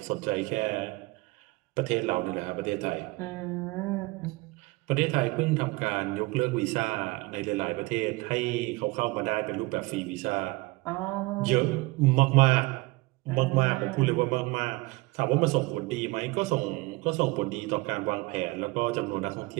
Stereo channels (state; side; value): quieter; left; 23.1 dB